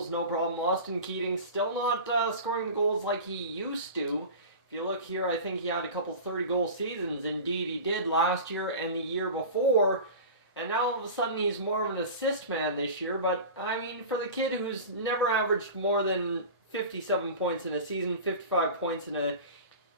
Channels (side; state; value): both; inverted; correlation -0.33